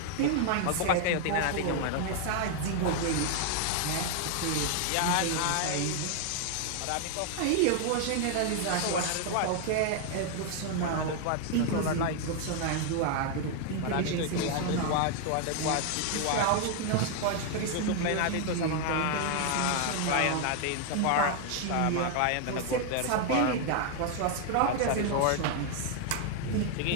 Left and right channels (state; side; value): different; both; correlation 0.00